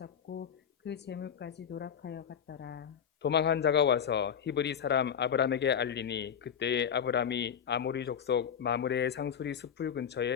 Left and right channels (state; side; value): quieter; right; 8.1 dB